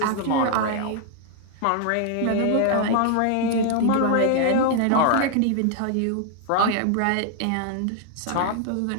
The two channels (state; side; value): different; both; correlation 0.00